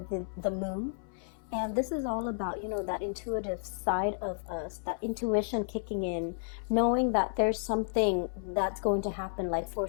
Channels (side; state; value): right; silent; 56 dB below the other